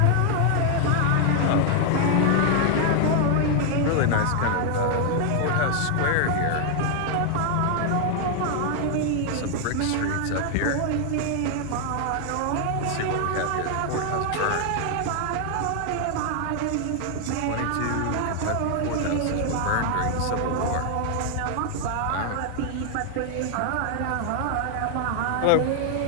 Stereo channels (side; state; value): both; different; correlation 0.00